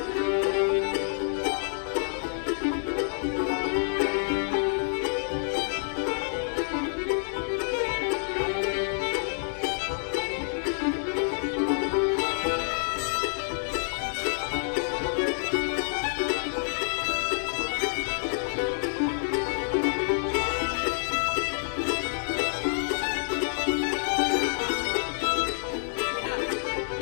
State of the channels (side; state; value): right; silent; 59 dB below the other